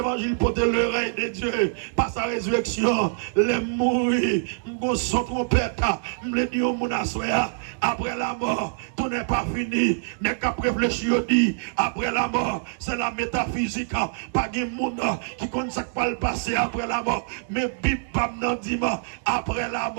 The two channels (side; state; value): left; silent; digital silence